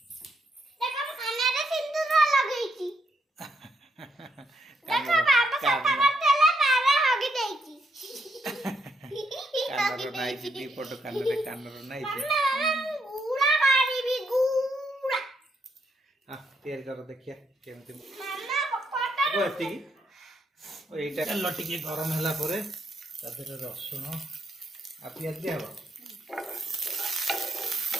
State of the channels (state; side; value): normal; both; correlation 0.76